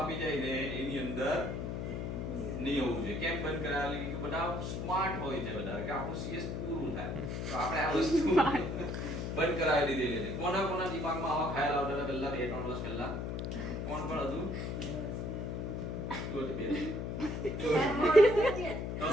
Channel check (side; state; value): left; noise; hum, 3 dB below the sound